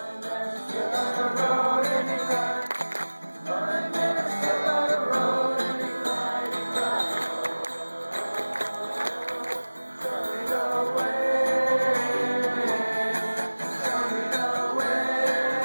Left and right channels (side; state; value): both; inverted; correlation -1.00